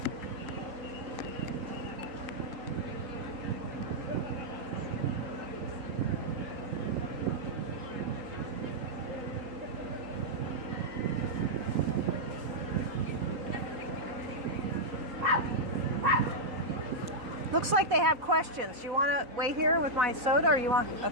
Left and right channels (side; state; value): left; late; 3.8 ms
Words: Looks like they have questions. You want to wait here with my soda, or you want?